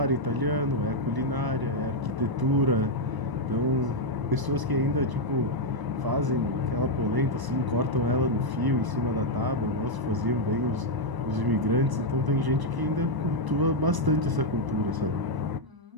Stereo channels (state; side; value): late; left; 1.0 ms